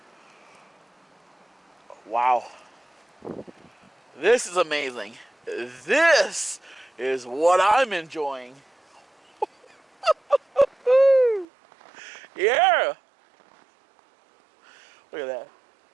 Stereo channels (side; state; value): left; drops out; at 11.5 s